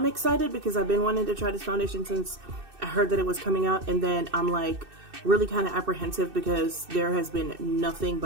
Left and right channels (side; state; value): left; late; 2.6 ms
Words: excited because I've been wanting to try this foundation since I heard that it was coming out, and then I'm like really kind of apprehensive because there has been nothing